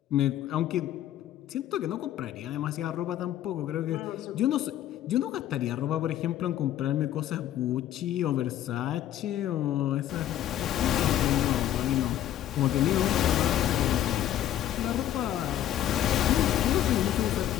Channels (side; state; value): right; quieter; 11.9 dB